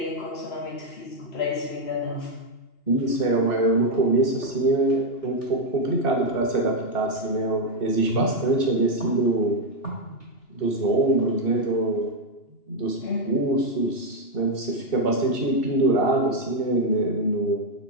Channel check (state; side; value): late; right; 2.7 ms